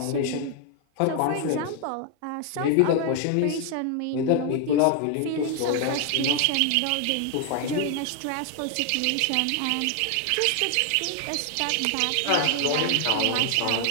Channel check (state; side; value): different; both; correlation 0.00